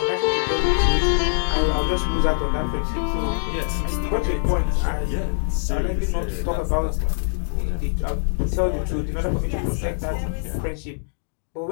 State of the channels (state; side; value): silent; right; digital silence